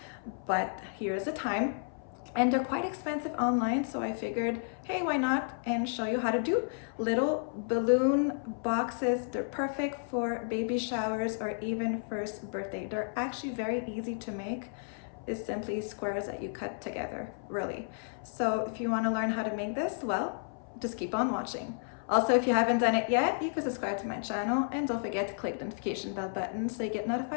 but here's the time. And they're quite expensive online, so I figured, hey, why not? And show you how to do little balloon boxes. They're perfect for baby showers or even first birthday. They're actually very easy to make. It's simply squares that you cut together, really. So if you want to learn how to make this, well, just keep on watching. Also, if you haven't done it yet, you can subscribe to my channel and don't forget to click the notification bell button so you get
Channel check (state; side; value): silent; right; 56 dB below the other